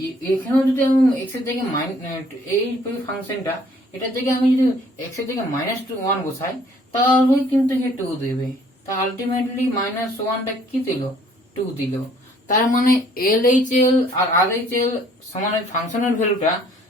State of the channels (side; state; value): both; normal; correlation 0.60